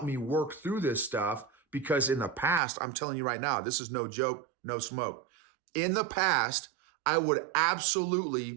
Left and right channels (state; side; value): drops out; left; at 2.6 s